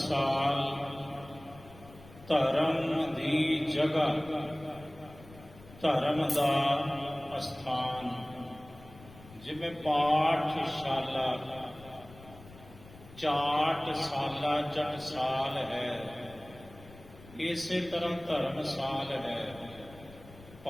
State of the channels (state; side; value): noise; left; rumble, 20 dB below the sound